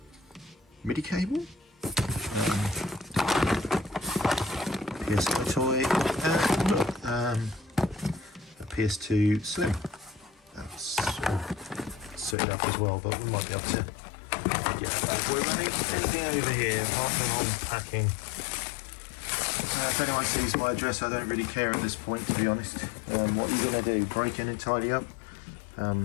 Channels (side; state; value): right; drops out; at 12.4 s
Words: MIDI cable. PS toy. And look, a PS2 Slim. soot it up as well, but we might be able to get that boy running. Anything over here? Unpacking. If anyone sees my address, I don't really care at this point, to be honest. What are you going to do? Break in and tidy up?